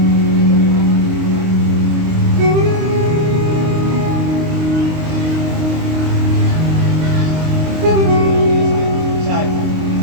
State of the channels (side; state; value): left; late; 26 ms